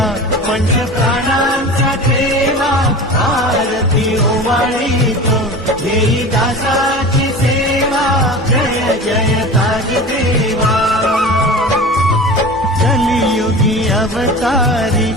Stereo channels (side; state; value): both; normal; correlation 0.34